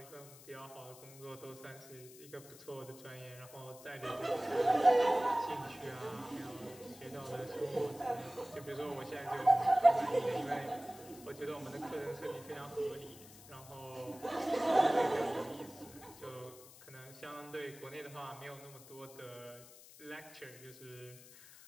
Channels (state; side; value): noise; left; hiss, 19 dB below the sound